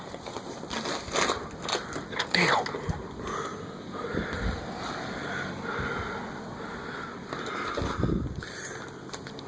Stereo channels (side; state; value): both; identical; correlation 1.00